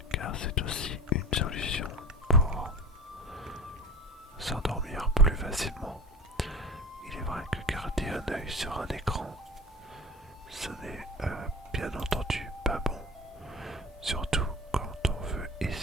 Car c'est aussi une solution pour s'endormir plus facilement. Il est vrai que garder un œil sur un écran, ce n'est bien entendu pas bon. Surtout quand on veut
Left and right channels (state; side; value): normal; both; correlation 0.34